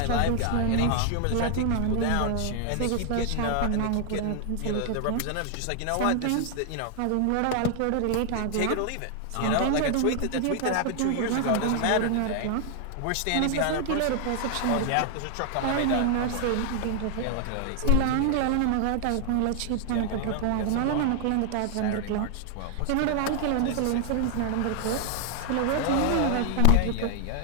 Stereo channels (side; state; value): both; different; correlation 0.00